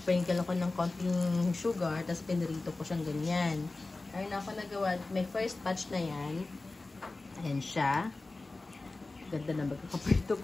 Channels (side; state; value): right; quieter; 3.3 dB